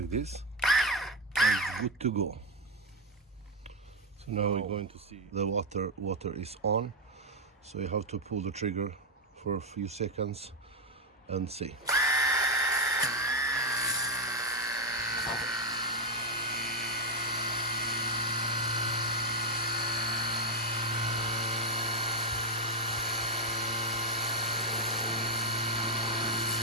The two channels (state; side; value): normal; both; correlation 0.05